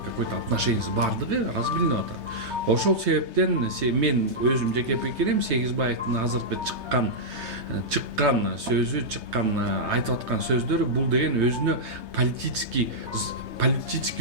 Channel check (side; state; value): left; late; 3.2 ms